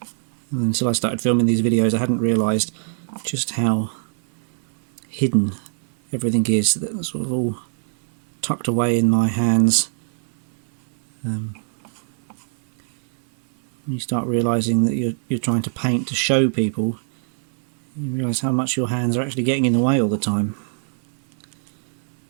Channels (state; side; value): silent; left; 62 dB below the other